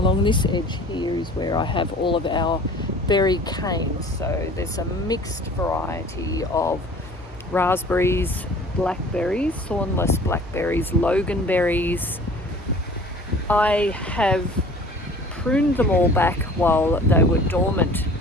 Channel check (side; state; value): both; normal; correlation 0.46